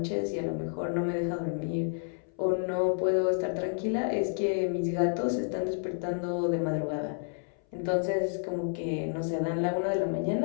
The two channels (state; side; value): silent; right; 58 dB below the other